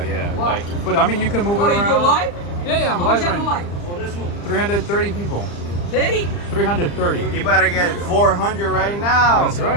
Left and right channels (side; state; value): right; late; 35 ms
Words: Yeah. Why? Like, but I mean, you can move it Oh, around. you do live? Yeah, I'm How live much right am now. I live? Oh, this one. 330 people. 30? 330. You better get 400 right now. That's